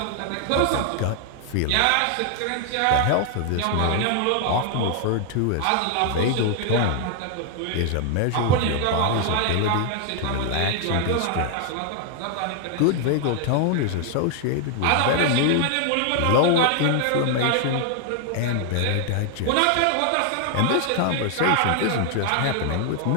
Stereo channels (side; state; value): both; different; correlation 0.00